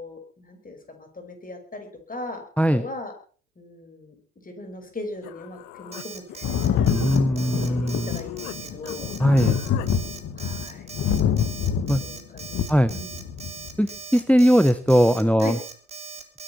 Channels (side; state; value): both; normal; correlation 0.80